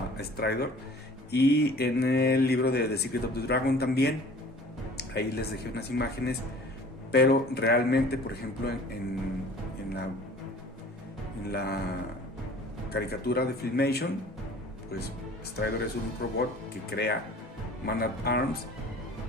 Stridor. Y en el libro de The Secret of the Dragon también, ahí les dejé unas imágenes, pero realmente, por ejemplo, en la caricatura de Filmation, pues Stridor es un robot que crea Man at Arms,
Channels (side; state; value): both; normal; correlation 0.47